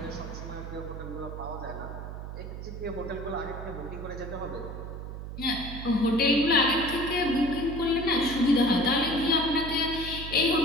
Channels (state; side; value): noise; right; hum, 8 dB below the sound